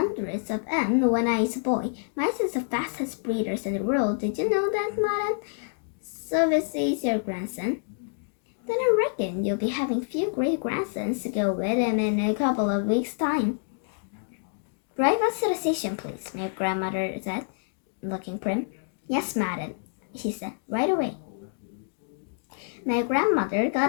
of them when I was a boy. Mice is the fastest breeders in the world. Did you know that, madam? So this is your grandson? Then I reckon you'll be having few great-grandsons to go with him in a couple of weeks' time." "Drive us to the station, please," my grandmother said, looking prim. "Yes, madam," she said, "right away." My grandmother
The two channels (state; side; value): silent; right; digital silence